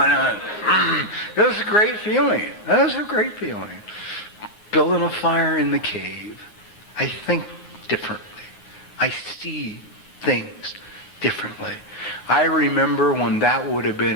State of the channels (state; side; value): late; right; 9.6 ms